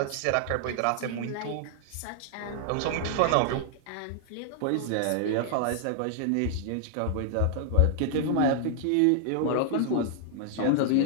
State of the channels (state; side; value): different; both; correlation -0.01